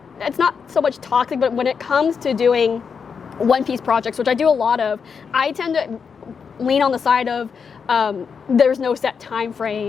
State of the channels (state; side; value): quieter; right; 6.1 dB